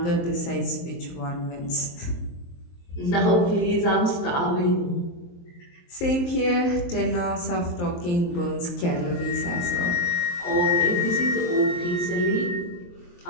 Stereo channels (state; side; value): late; right; 23 ms